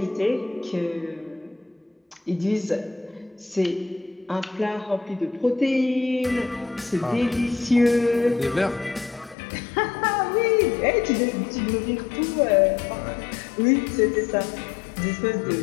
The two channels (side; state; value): right; drops out; at 9.3 s